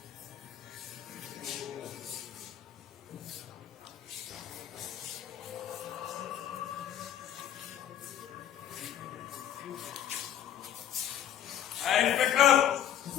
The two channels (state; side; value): quieter; right; 10.5 dB